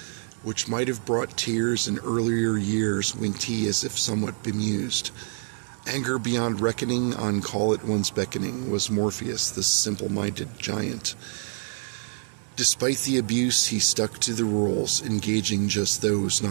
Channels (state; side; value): silent; left; digital silence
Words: which might have brought tears in earlier years, winked he as if somewhat bemused. Anger beyond reckoning, on call at once beckoning, was Morpheus, the simple-minded giant. Despite the abuse, he stuck to the rules, engaging just those